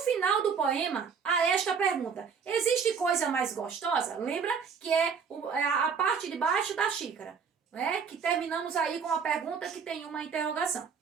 do poema, há esta pergunta. Existe coisa mais gostosa? Lembra que é a parte de baixo da xícara, né? Que terminamos aí com a pergunta que tem uma interrogação.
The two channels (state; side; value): quieter; left; 6.2 dB